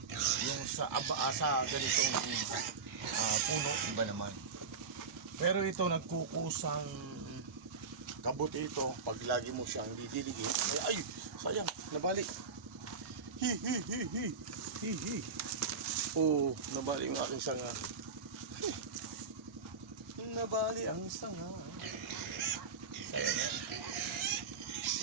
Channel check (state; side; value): quieter; left; 5.1 dB